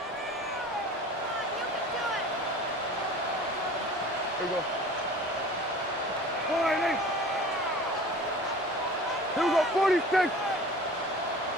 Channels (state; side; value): normal; both; correlation 0.42